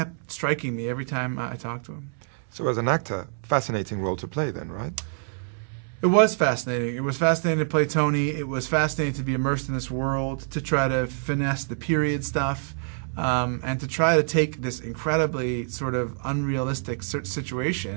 striking me every time I talked to him. So as an actor, fascinating role to play then, right? It was fascinating. It was fascinating to play Tony. It was fascinating to be immersed in this world, to try to finesse the period stuff. And to try to take this incredibly sort of unrealistic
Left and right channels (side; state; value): left; silent; 61 dB below the other